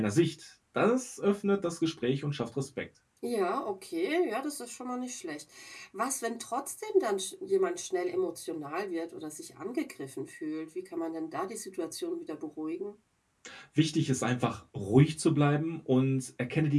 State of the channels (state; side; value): identical; both; correlation 1.00